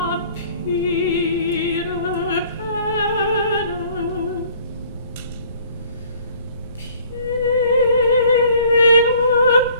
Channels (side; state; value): both; inverted; correlation -0.55